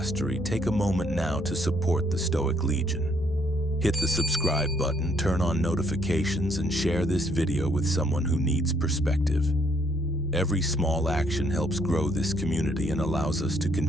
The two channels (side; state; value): both; normal; correlation 0.69